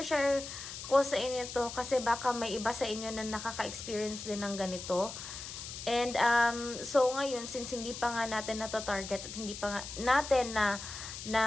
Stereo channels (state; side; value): noise; left; hiss, 9 dB below the sound